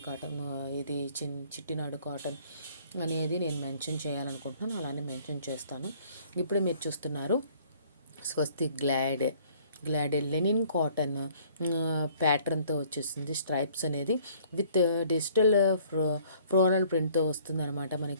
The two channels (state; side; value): inverted; both; correlation -0.58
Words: కాటన్, ఇది చిట్టినాడు కాటన్ అనేది నేను మెన్షన్ చేయాలనుకుంటున్నాను. అలానే మెన్షన్ చేస్తాను. ఇప్పుడు మీరు చూస్తున్నారు స్వస్తిక్ గ్లాడ్ లెనిన్ కాటన్ ప్యాటర్న్తో వచ్చేసింది. స్ట్రైప్స్ అనేది విత్ డిజిటల్ ఫ్లోరల్ ప్రింట్తో వస్తుంది అనమాట.